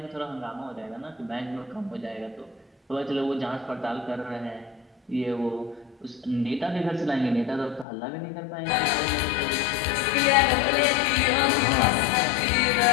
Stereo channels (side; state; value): right; drops out; at 7.9 s